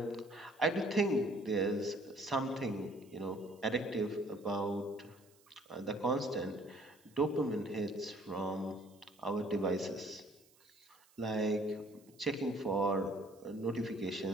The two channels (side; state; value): right; noise; hiss, 29 dB below the sound